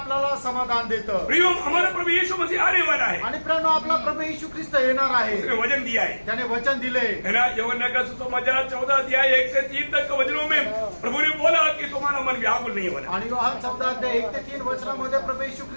समाधान देतं। प्रियो, हमारा प्रभु यीशु मसीह आने वाला है, आणि प्रिय आपला प्रभू येशू ख्रिस्त येणार आहे, उसने वचन दिया है, त्याने वचन दिले है ना। यूहन्ना का सुसमाचार 14 अध्याय 1 से 3 तक के वचनों में प्रभु ने बोला कि तुम्हारा मन व्याकुल नहीं होना। आणि योहान 14 अध्याय 1 ते 3 वचनामध्ये प्रभू येशू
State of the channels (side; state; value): both; inverted; correlation -1.00